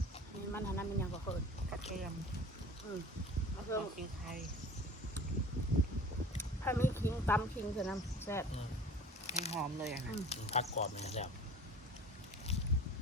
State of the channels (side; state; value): both; normal; correlation 0.43